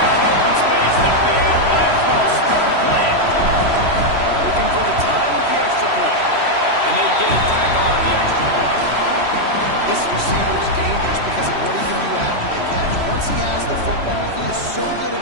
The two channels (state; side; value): late; left; 3.1 ms